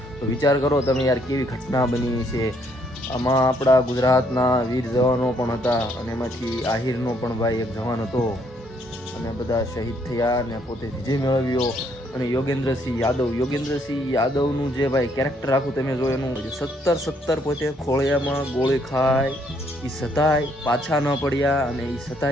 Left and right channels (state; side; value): normal; both; correlation 0.69